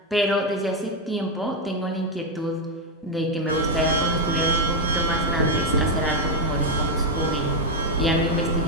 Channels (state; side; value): normal; both; correlation 0.04